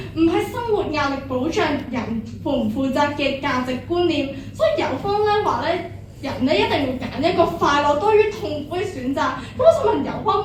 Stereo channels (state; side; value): identical; both; correlation 1.00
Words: 唔係生活壓力保障人負唔負責嘅價值觀念，所以有方咧話咧，人咧一定會揀一個快樂多於痛苦嘅選擇。咁我想問有